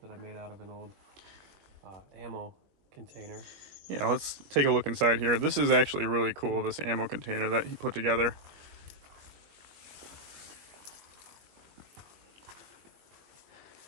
that I made out of an old ammo container. Yeah, let's take a look inside here. This is actually really cool, this ammo container that he put together.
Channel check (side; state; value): left; late; 21 ms